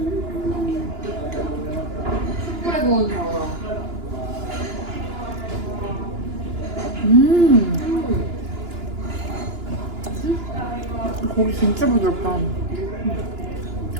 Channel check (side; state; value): left; late; 2.9 ms